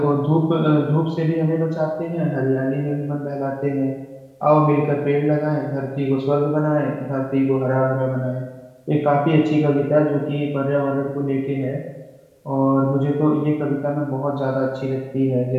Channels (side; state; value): both; identical; correlation 1.00